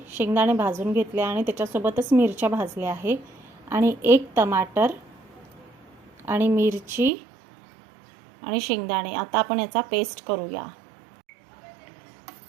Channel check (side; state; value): left; drops out; at 7.1 s